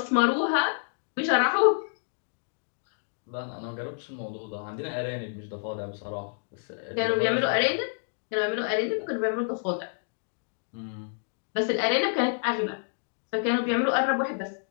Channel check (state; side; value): silent; right; digital silence